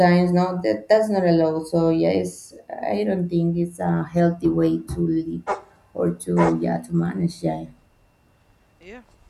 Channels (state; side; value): identical; both; correlation 1.00